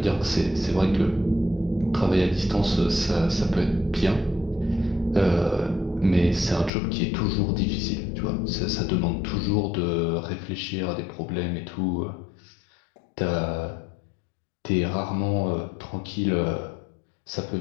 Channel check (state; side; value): drops out; right; at 6.7 s